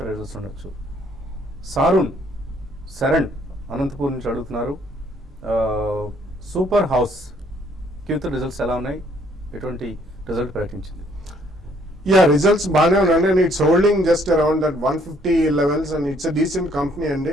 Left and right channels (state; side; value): normal; both; correlation 0.65